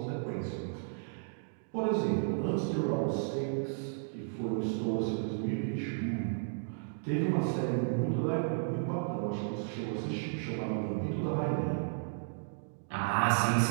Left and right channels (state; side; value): silent; left; digital silence